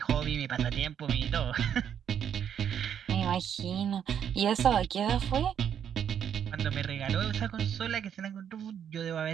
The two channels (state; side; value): quieter; left; 8.7 dB